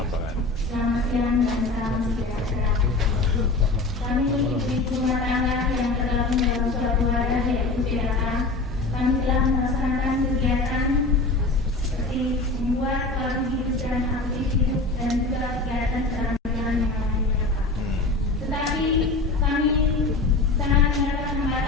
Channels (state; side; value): quieter; right; 3.3 dB